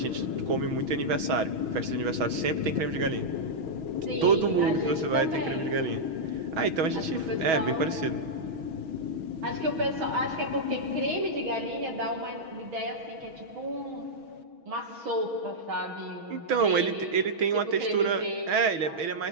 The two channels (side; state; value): left; late; 6.2 ms